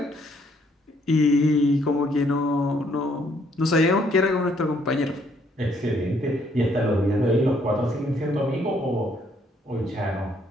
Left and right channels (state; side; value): normal; both; correlation 0.68